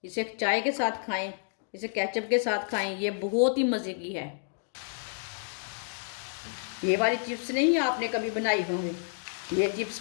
इसे चाय के साथ खाएं, इसे केचप के साथ खाएं। ये बहुत ही मज़े की है। ये वाली चिप्स नहीं आपने कभी बनाई होंगी। ये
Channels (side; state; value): right; silent; digital silence